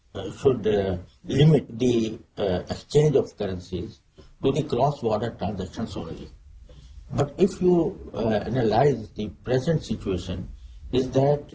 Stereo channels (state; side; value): identical; both; correlation 1.00